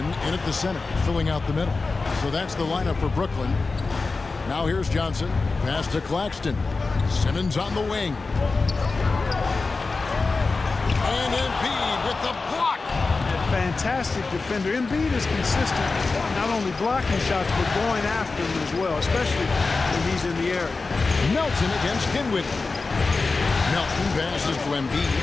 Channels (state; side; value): quieter; right; 3.9 dB